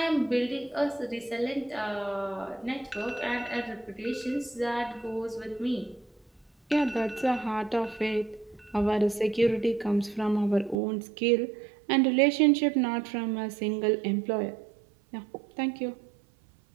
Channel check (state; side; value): drops out; left; at 10.8 s